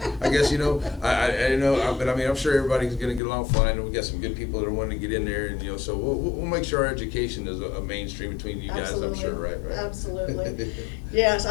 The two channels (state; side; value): drops out; right; at 3.2 s